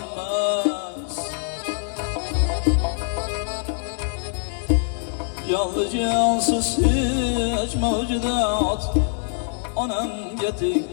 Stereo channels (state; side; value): silent; right; 63 dB below the other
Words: Jonli jonsiz hech mavjudot onamga teng